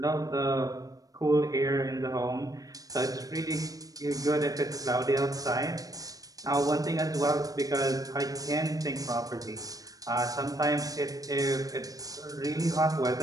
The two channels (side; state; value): left; late; 0.17 ms